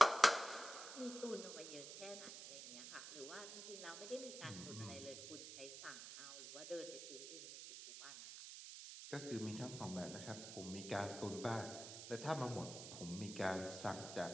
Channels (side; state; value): right; noise; hiss, 9 dB below the sound